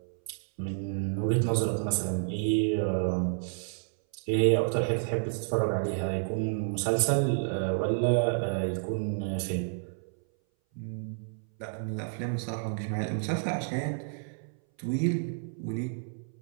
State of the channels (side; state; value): left; silent; 58 dB below the other